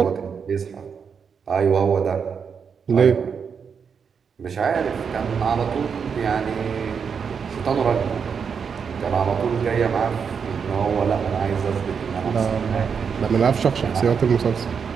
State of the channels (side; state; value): left; quieter; 6.4 dB